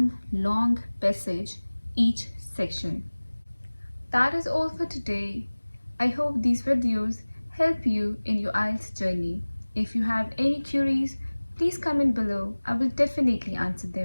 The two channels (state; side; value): inverted; both; correlation -1.00